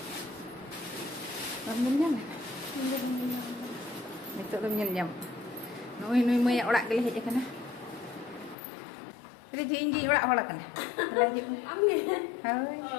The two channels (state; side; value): drops out; right; at 8.6 s